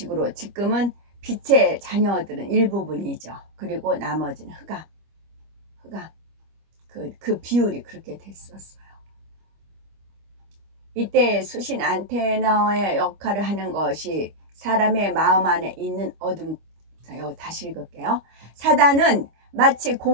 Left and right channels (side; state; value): left; late; 25 ms